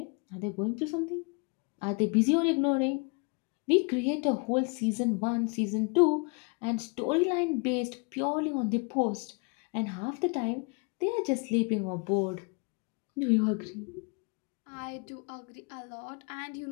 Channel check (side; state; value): right; quieter; 33.2 dB